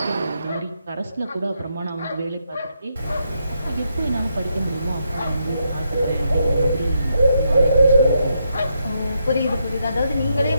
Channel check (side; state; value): both; inverted; correlation -0.80